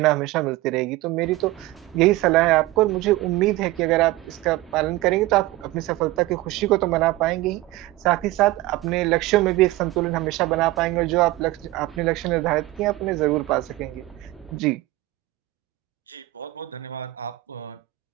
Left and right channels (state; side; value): quieter; left; 18.1 dB